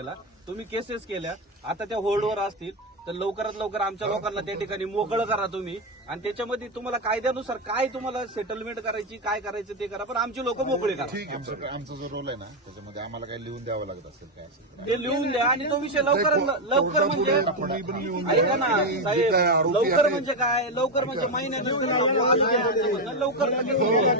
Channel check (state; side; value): normal; both; correlation 0.08